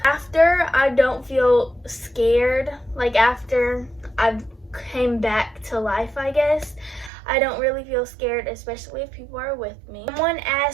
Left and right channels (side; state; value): left; drops out; at 7.1 s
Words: After, I don't feel scared. Like, after I've came back to life, I guess, I don't really feel scared, especially if people are with me. Someone